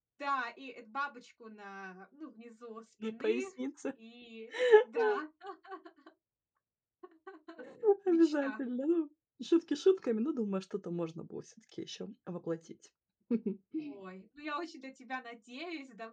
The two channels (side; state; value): both; identical; correlation 1.00